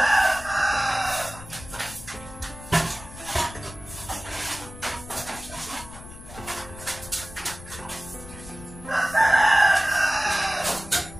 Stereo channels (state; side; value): noise; left; rumble, 16 dB below the sound